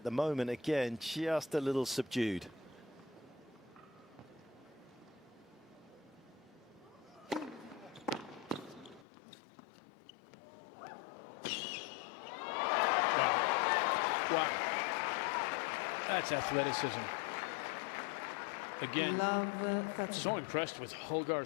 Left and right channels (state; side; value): drops out; right; at 9.1 s